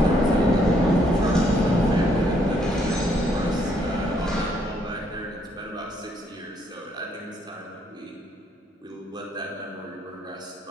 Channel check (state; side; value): normal; both; correlation 0.70